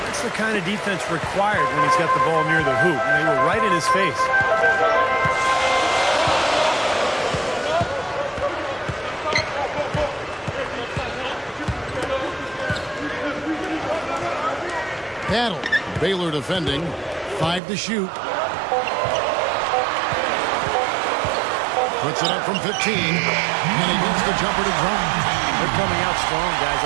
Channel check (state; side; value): drops out; left; at 17.6 s